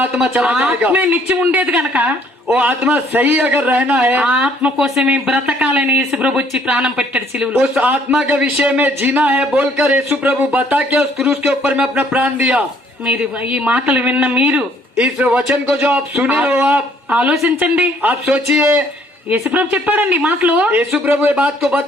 आत्मा चला जाएगा. ఆత్మే నిత్యం ఉండేది గనక वो आत्मा सही अगर रहना है, ఆ ఆత్మ కోసమే బ్రతకాలని యేసు ప్రభు వచ్చి ప్రాణం పెట్టాడు సిలువలో. उस आत्मा के विषय में जीना है बोलकर यीशु प्रभु बता के उस क्रूस के ऊपर में अपना प्राण दिया. మీరు ఈ మాటలు విన్న మీరు इस वचन को जो आप सुने हो, ఆలోచించండి. आप सोचिए। యేసుప్రభు చెప్పాడండి ఈ మాటలు. यीशु प्रभु ये बात को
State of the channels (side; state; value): both; normal; correlation 0.62